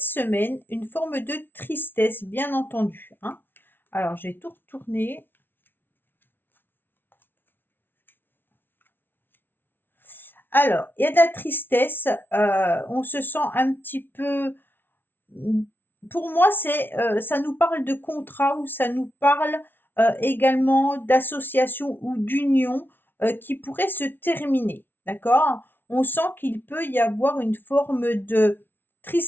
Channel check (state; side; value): late; right; 0.10 ms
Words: une forme de tristesse, bien entendu, hein. Alors, j'ai tout retourné. Alors, il y a de la tristesse. On se sent un petit peu pour moi, ça nous parle de contrat ou ça nous parle également d'association ou d'union qui pourrait se terminer, d'accord? On sent qu'il peut y avoir une forme de